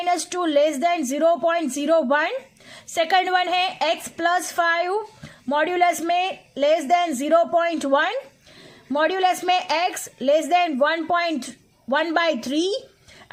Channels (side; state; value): both; identical; correlation 1.00